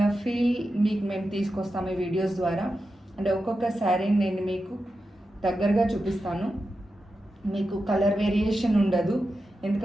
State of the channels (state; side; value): normal; both; correlation 0.90